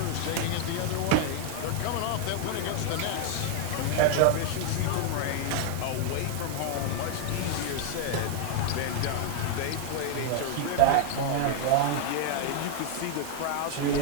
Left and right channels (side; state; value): both; different; correlation 0.00